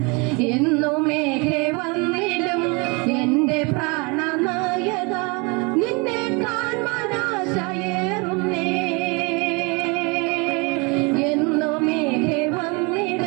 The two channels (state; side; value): quieter; left; 29.5 dB